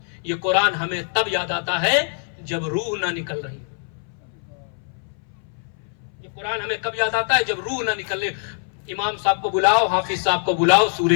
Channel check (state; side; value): silent; right; 61 dB below the other